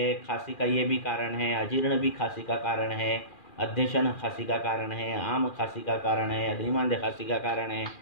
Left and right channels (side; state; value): right; late; 2.4 ms